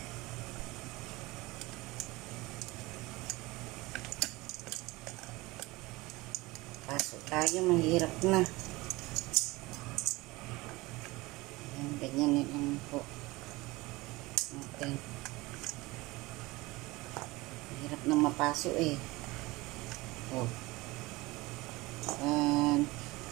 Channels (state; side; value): quieter; left; 21.5 dB